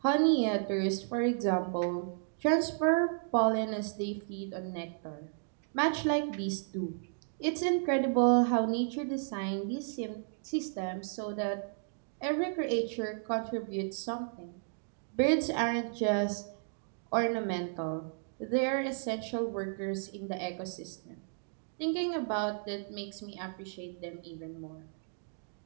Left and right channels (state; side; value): silent; left; digital silence